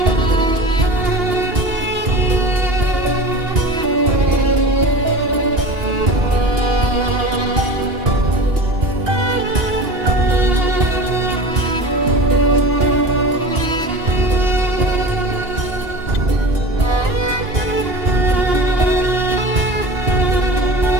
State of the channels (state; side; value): late; left; 2.9 ms